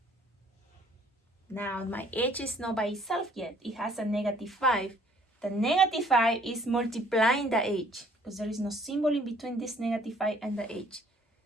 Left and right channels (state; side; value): normal; both; correlation 0.59